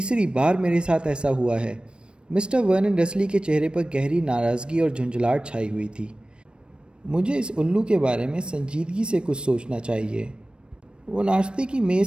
بار میرے ساتھ ایسا ہوا ہے۔ مسٹر ورنن ڈرسلی کے چہرے پر گہری ناراضگی اور جھنجھلاہٹ چھائی ہوئی تھی۔ مجھے اس الو کے بارے میں سنجیدگی سے کچھ سوچنا چاہیے۔ وہ ناشتے کی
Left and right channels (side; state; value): left; late; 0.055 ms